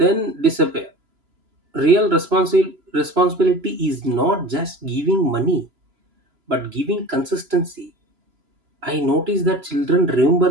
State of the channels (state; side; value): late; left; 3.0 ms